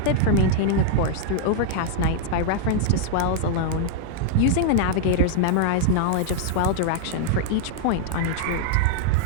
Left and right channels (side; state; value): both; different; correlation -0.01